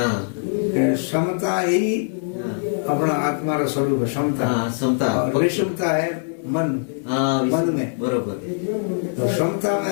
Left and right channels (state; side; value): silent; right; digital silence